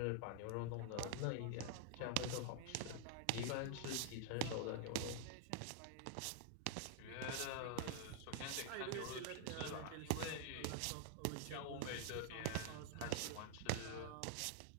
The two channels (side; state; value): both; different; correlation -0.01